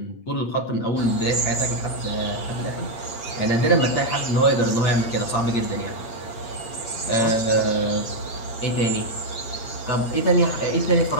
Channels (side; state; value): right; late; 8.7 ms